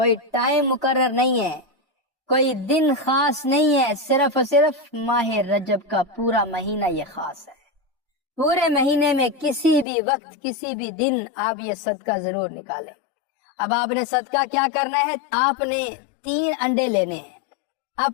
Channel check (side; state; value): right; drops out; at 9.9 s